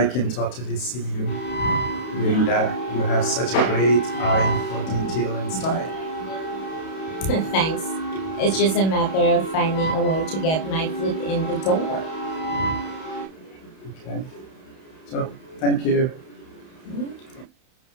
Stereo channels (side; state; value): right; late; 31 ms